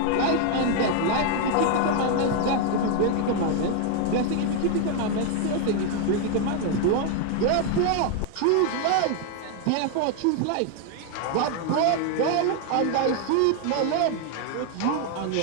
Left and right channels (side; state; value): both; different; correlation 0.01